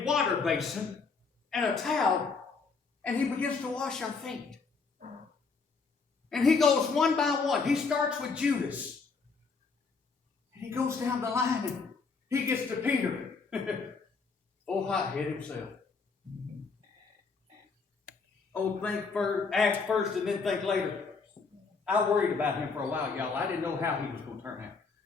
water basin and a towel and he begins to wash our feet. And he goes one by one. He starts with Judas. And he goes down the line and he gets to Peter. Oh, hothead himself. Oh, act first and then think later. I worried about him for a while, y'all. I didn't know how he was going to turn out.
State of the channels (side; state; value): right; quieter; 4.7 dB